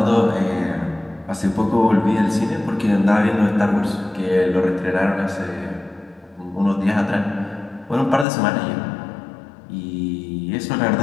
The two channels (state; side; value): drops out; right; at 8.2 s